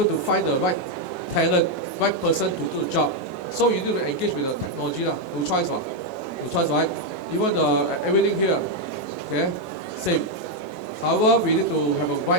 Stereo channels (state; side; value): normal; both; correlation 0.02